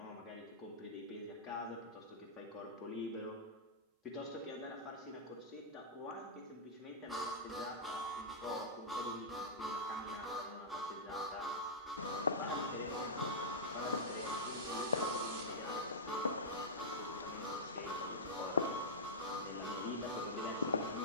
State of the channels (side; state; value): both; normal; correlation -0.12